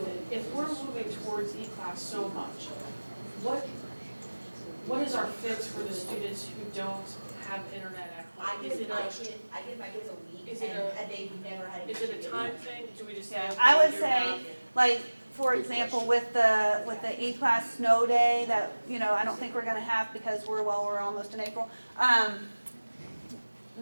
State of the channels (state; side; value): inverted; both; correlation -1.00